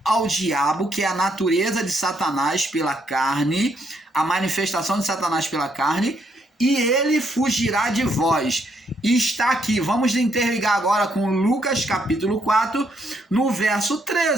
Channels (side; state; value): both; normal; correlation 0.74